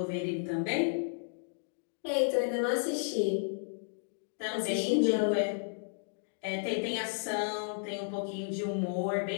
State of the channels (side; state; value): right; silent; digital silence